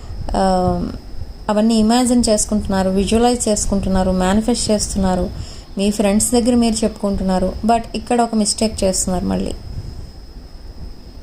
అవన్నీ ఇమాజిన్ చేసుకుంటున్నారు, విజువలైజ్ చేసుకుంటున్నారు, మేనిఫెస్ట్ చేస్తున్నారు. మీ ఫ్రెండ్స్ దగ్గర మీరు చెప్పుకుంటున్నారు. బట్ ఇక్కడ ఒక మిస్టేక్ చేస్తున్నారు. మళ్ళీ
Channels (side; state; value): both; identical; correlation 1.00